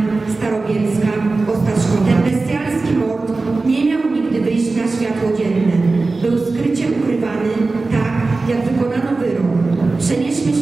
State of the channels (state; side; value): quieter; left; 3.6 dB